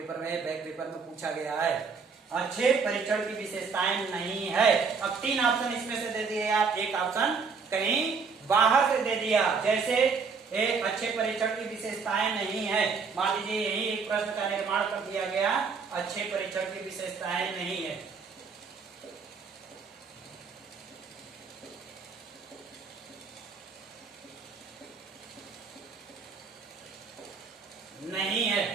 में बैक पेपर में पूछा गया है। अच्छे परीक्षण की विशेषताएं नहीं है। अब 3 ऑप्शन इसमें से दे दिए आप, एक ऑप्शन कहीं बाहर से दे दिया। जैसे एक अच्छे परीक्षण की विशेषताएं नहीं है, मान लीजिए यही एक प्रश्न का निर्माण कर दिया गया, अच्छे परीक्षण की विशेषताएं नहीं है। नहीं है।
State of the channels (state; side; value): quieter; left; 5.2 dB